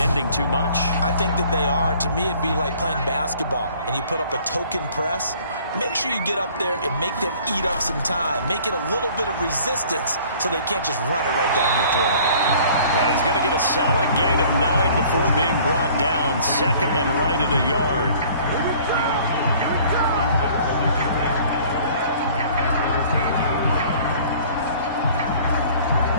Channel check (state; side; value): inverted; both; correlation -0.52